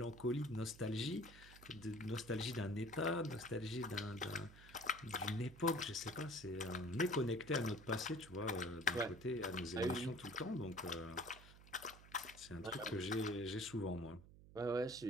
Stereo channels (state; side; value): noise; right; hum, 19 dB below the sound